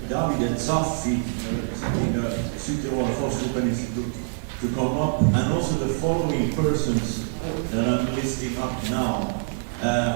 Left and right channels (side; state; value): left; silent; digital silence